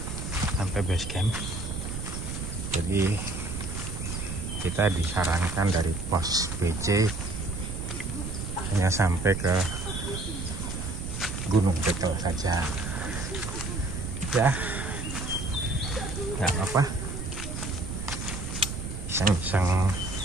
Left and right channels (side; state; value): right; noise; rumble, 5 dB below the sound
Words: sampai base camp. Jadi kita disarankan dari pos BC hanya sampai ke Gunung Bekel saja ya, nggak apa-apa, iseng-iseng